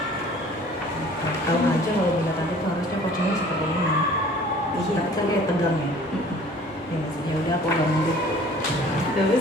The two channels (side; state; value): both; normal; correlation 0.50